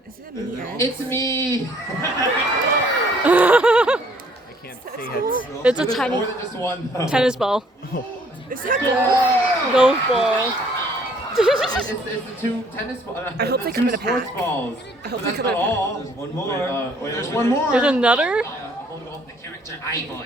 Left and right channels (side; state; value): both; normal; correlation 0.61